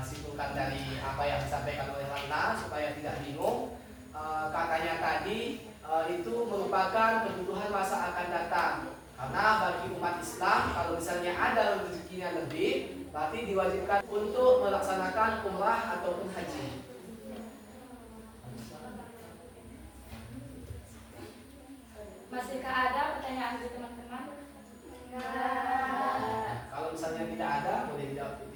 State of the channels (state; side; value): identical; both; correlation 1.00